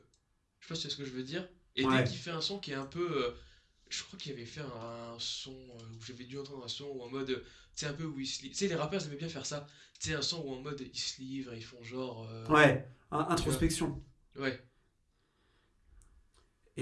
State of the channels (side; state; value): both; identical; correlation 1.00